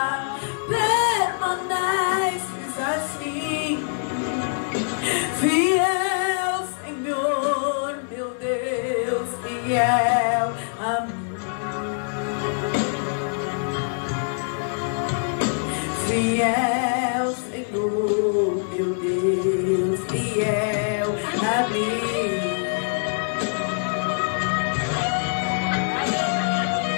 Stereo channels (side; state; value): right; silent; digital silence